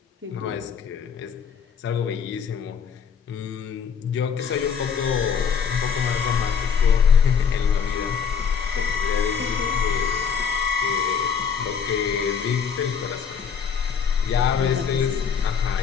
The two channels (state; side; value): quieter; right; 6.8 dB